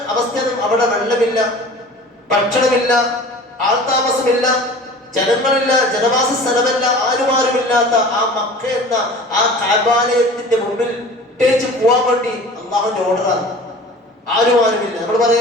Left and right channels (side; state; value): both; normal; correlation 0.41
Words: അവസ്ഥ, അവിടെ വെള്ളമില്ല, ഭക്ഷണമില്ല, ആൾതാമസമില്ല, ജനങ്ങളില്ല, ജനവാസ സ്ഥലമല്ല, ആരുമാരുമില്ലാത്ത ആ മക്ക എന്ന ആ കഅബാലയത്തിന്റെ മുമ്പിൽ ഇട്ടേച്ച് പോവാൻ വേണ്ടി അള്ളാഹുവിന്റെ ഓർഡറാണ്. ആരുമാരുമില്ല. നമ്മൾ